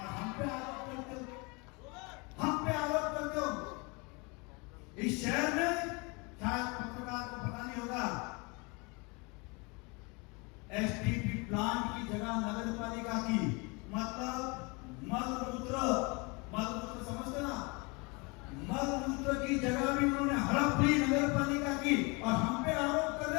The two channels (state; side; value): quieter; right; 28.9 dB